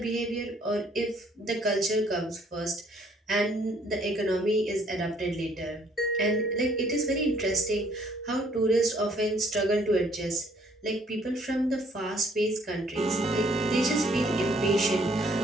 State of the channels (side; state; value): both; normal; correlation 0.63